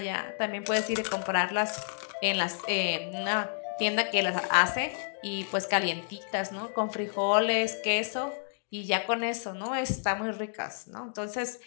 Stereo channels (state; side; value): silent; right; digital silence